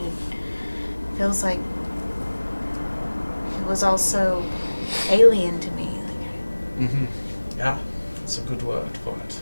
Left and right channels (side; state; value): both; inverted; correlation -1.00